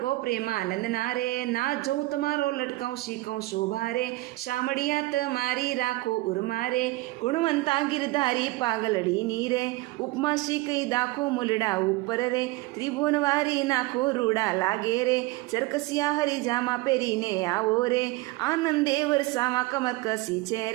પ્રેમાનંદ ના રે, ના જોઉં તમારો લટકાઉં શીખઉં શોભા રે, શામળિયા તમારી રાખો ઉર્મા રે, ગુણવંતા ગિરધારી પાગલડીની રે, ઉપમા શીખઈ દાખો મુલડા ઉપર રે, ત્રિભુવનવારી નાખો રૂડા લાગે રે, ચરકસિયા હરિજામાં પહેરીને આવો રે, આનંદે વરસામાં કમર કસી છે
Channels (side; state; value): left; quieter; 20.3 dB